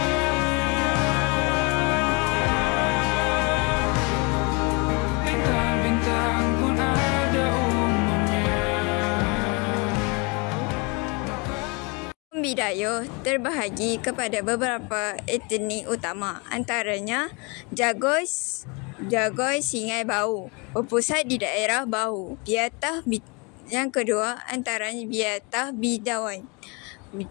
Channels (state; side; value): quieter; right; 30.4 dB